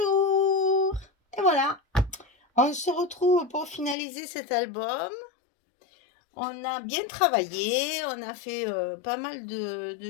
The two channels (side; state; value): right; drops out; at 4.0 s